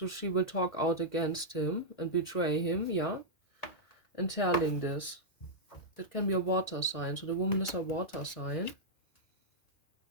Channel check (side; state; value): right; late; 1.9 ms